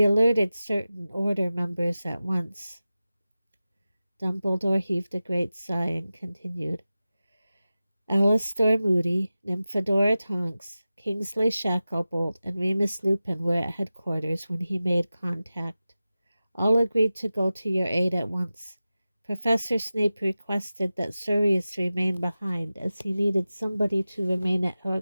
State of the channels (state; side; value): inverted; both; correlation -0.95